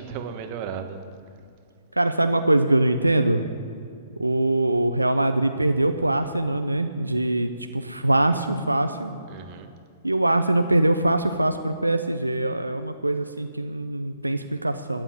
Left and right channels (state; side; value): inverted; both; correlation -0.89